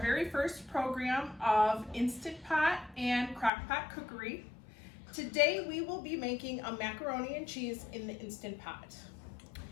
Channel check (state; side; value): drops out; right; at 3.5 s